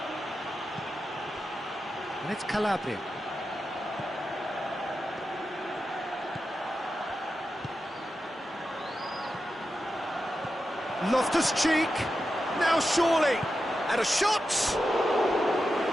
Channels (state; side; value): normal; both; correlation 0.90